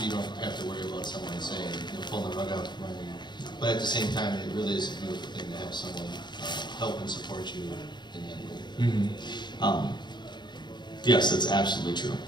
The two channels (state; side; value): late; right; 0.21 ms